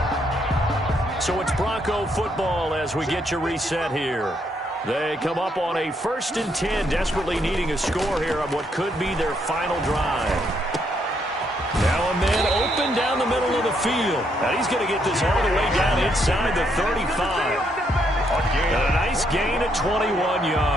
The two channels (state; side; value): normal; both; correlation 0.74